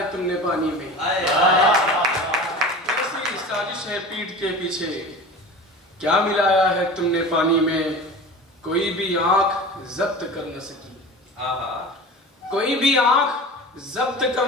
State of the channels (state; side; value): normal; both; correlation 0.35